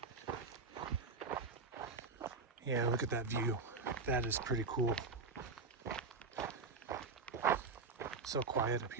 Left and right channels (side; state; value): left; quieter; 4.4 dB